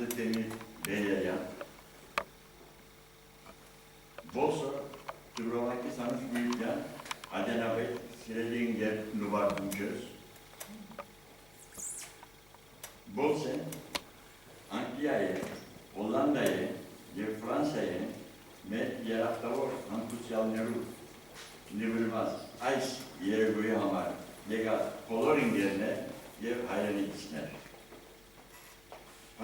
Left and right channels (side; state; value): left; noise; hum, 26 dB below the sound